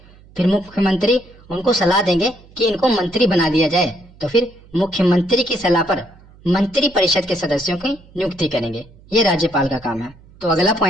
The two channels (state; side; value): noise; right; hum, 25 dB below the sound